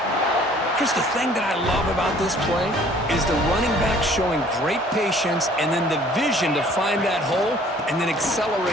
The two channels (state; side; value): normal; both; correlation 0.55